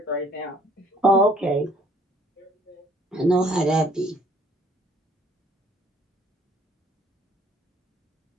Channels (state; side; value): normal; both; correlation 0.59